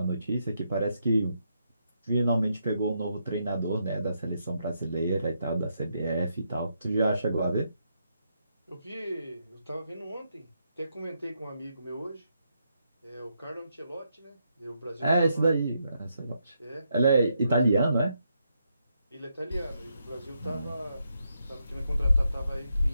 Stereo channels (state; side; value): inverted; both; correlation -0.80